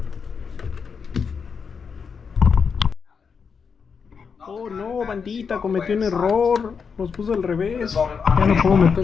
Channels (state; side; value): quieter; right; 6.0 dB